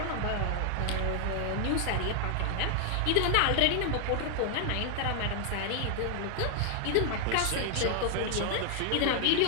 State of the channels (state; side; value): different; both; correlation 0.00